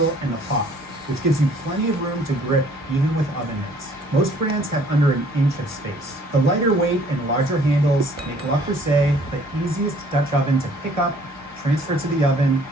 and the pot, which gives you plenty of room to grip even with oven mitts. Most brands have under 1 inch of space. The lighter weight and larger handles make Le Creuset the easiest Dutch oven to pick up, transfer to the oven,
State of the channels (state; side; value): normal; both; correlation 0.58